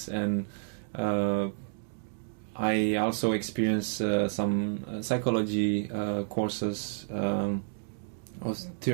and I also experienced some psychology courses or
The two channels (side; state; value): left; silent; digital silence